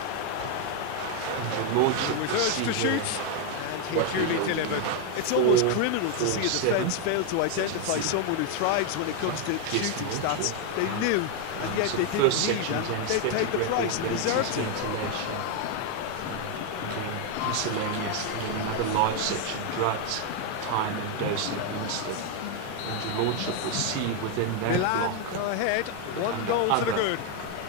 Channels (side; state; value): both; different; correlation 0.01